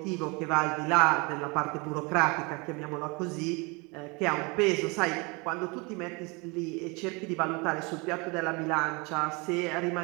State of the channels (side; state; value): left; quieter; 28.3 dB